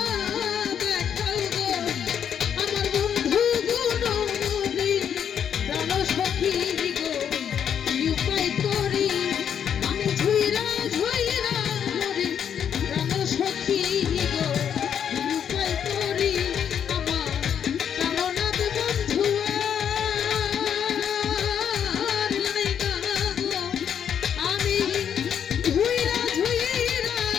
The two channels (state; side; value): quieter; right; 8.4 dB